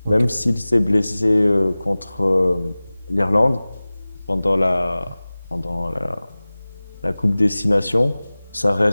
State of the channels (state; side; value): inverted; both; correlation -0.99